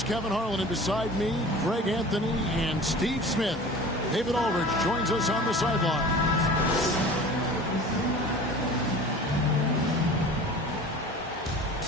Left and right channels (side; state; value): both; normal; correlation 0.40